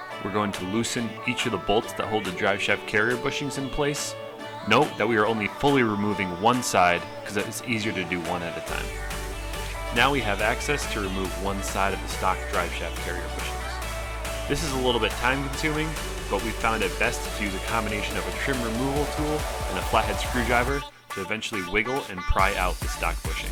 we're going to loosen each of the bolts that hold the driveshaft carrier bushings in place. Note that we are only fully removing one side because it's easier to do one at a time. Now we have access to remove one side of the stock driveshaft carrier bushings. This is a little bit time consuming, but we found it best to use a combination of a trim removal tool and a flathead screwdriver to eventually wiggle and pry out the stock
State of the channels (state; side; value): identical; both; correlation 1.00